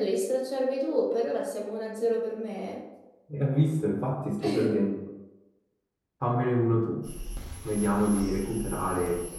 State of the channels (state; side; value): identical; both; correlation 1.00